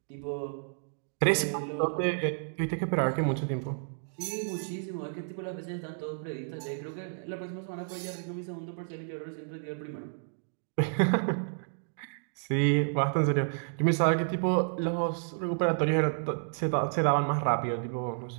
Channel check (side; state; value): left; silent; digital silence